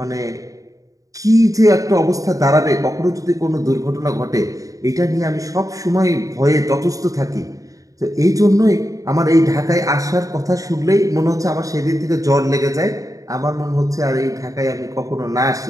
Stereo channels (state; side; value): late; left; 0.16 ms